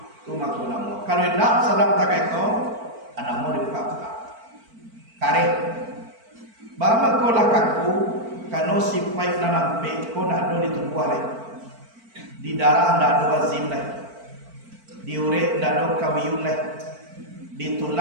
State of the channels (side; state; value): left; late; 4.5 ms